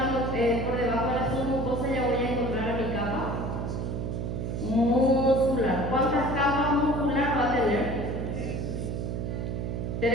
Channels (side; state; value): right; noise; hum, 3 dB below the sound